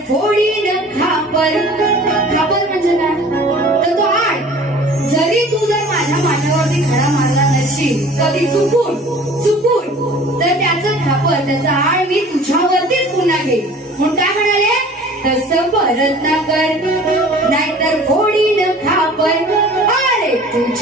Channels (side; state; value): both; normal; correlation 0.46